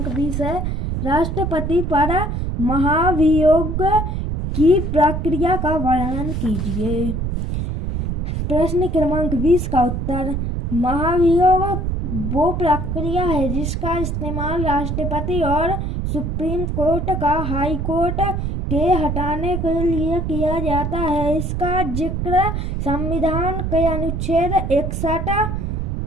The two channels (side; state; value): right; noise; rumble, 2 dB below the sound